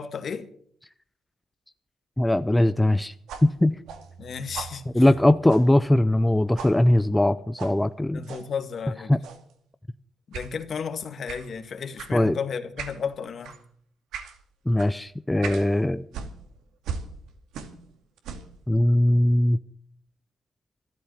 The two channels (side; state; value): both; normal; correlation 0.98